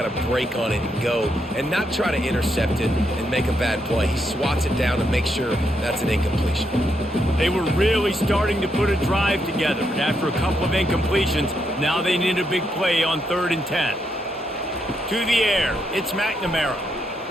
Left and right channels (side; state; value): both; normal; correlation 0.79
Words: to break on it and go, and not try to intercept it and make a bad play. He swats it down and makes sure that's an incompletion. They were really starting to put a drive together, but after a couple of incompletions, now they need a big play on 3rd and 10. To the air, it's McNamara.